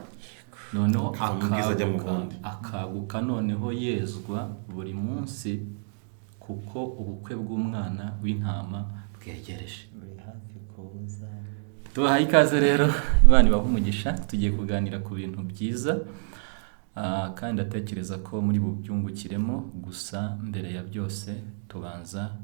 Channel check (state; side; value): silent; left; digital silence